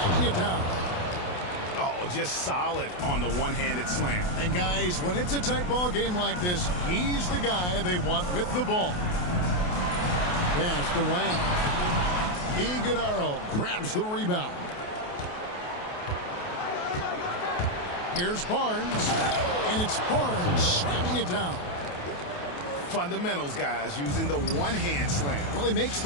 it down. Oh, just solid on the one-handed slam. And guys, when it's a tight ball game like this, he's the guy they want with the ball. Passed away. Iguodaro grabs the rebound. Here's Barnes. And it's Barnes slamming it down. Fundamentals, guys, using the one-hand slam. Really makes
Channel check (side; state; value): right; late; 28 ms